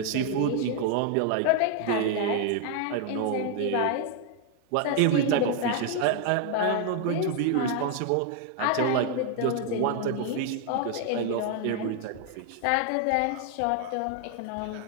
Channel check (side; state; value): both; different; correlation 0.00